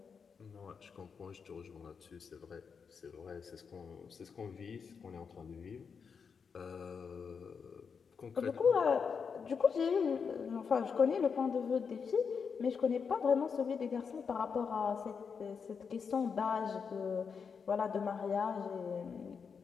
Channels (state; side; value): quieter; right; 6.0 dB